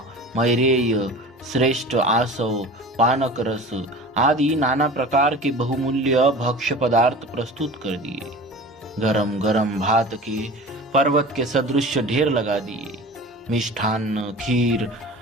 मैरेय, श्रेष्ठ आसव, पानक रस आदि नाना प्रकार के बहुमूल्य भक्ष्य पदार्थ प्रस्तुत कर दिए। गरम गरम भात के पर्वत के सदृश ढेर लगा दिए। मिष्ठान्न, खीर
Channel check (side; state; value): both; normal; correlation 0.38